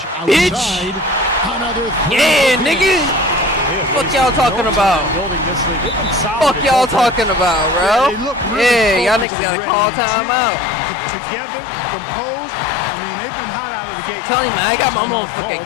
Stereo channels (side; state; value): right; drops out; at 9.2 s